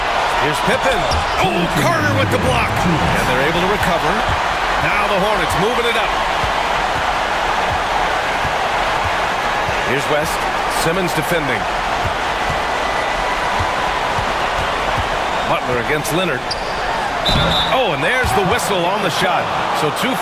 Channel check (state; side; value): identical; both; correlation 1.00